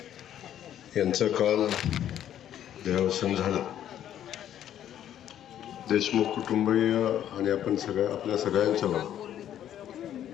यांचं काल देहावसान झालं. देशमुख कुटुंबीय आणि आपल्या सगळ्यांच्यावर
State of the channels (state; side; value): quieter; right; 10.8 dB